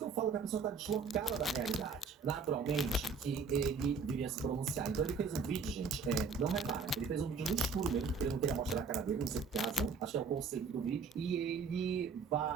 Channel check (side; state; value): left; quieter; 4.9 dB